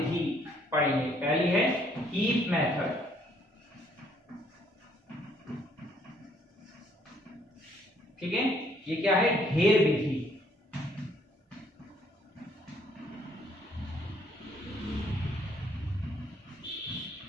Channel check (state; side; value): normal; both; correlation 0.65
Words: पढ़ेंगे। पहली है हीप मेथड, ठीक है। ये क्या है, ढेर विधि।